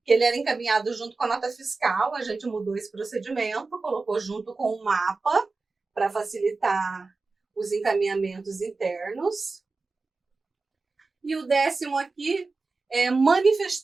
que ele era encaminhado junto com a nota fiscal, a gente mudou esse procedimento, colocou junto com o mapa para facilitar os encaminhamentos internos. E o 10º aqui é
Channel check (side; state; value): left; quieter; 3.9 dB